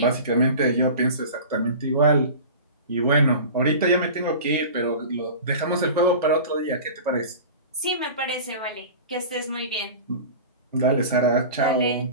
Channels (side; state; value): both; inverted; correlation -0.35